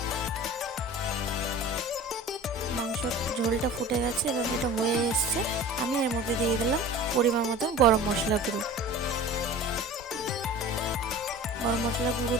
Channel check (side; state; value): both; normal; correlation 0.39